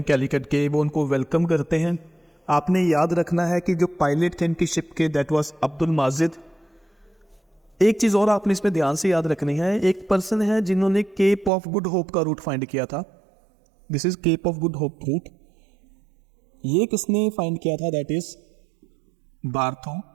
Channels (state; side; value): drops out; left; at 11.5 s